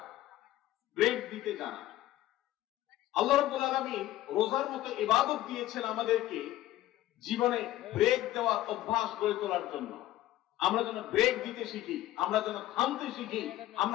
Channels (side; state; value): right; quieter; 14.7 dB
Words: ব্রেক দিতে জানা। আল্লাহ রাব্বুল আলামিন রোজার মতো ইবাদত দিয়েছেন আমাদেরকে জীবনে ব্রেক দেওয়ার অভ্যাস গড়ে তোলার জন্য। আমরা যেন ব্রেক দিতে শিখি, আমরা যেন থামতে শিখি,